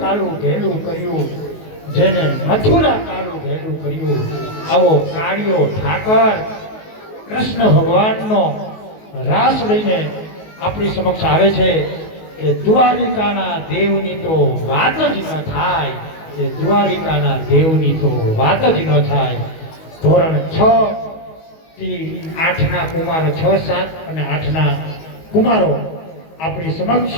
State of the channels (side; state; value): right; late; 19 ms